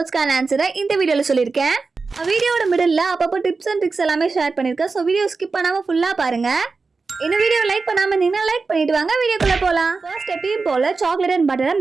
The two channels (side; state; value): left; quieter; 4.3 dB